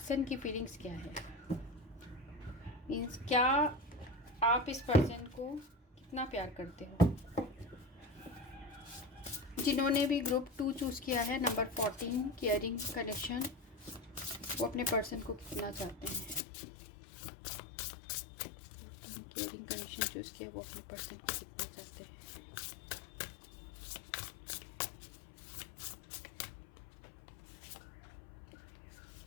की फीलिंग्स क्या है। मीन्स क्या आप इस पर्सन को कितना प्यार करते हो। जिन्होंने भी ग्रुप 2 चूज़ किया है, नंबर 14, केयरिंग कनेक्शन, वो अपने पर्सन को कितना चाहते हैं। केयरिंग कनेक्शन चूज़ किया, वो अपने पर्सन को कितना चाहते हैं।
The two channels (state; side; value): drops out; right; at 16.4 s